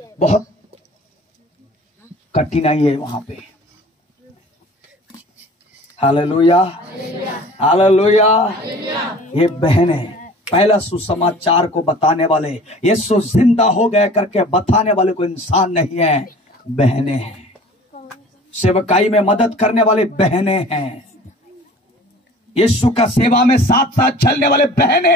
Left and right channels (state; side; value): normal; both; correlation 0.45